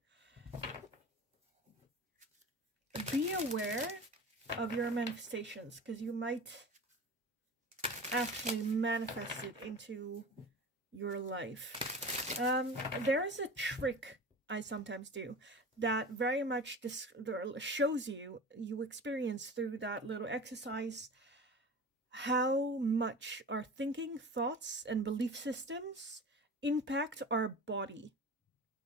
be aware of your manifestations, because you might actually manifest it into your life. There is a trick I sometimes do that very much shows you experience through that little exercise how much our thinking, thoughts, and belief systems impact our body.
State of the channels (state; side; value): normal; both; correlation 0.34